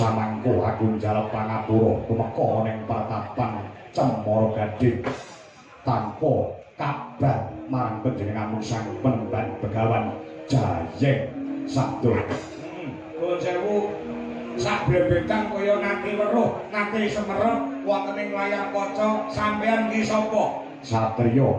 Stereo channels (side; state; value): both; identical; correlation 1.00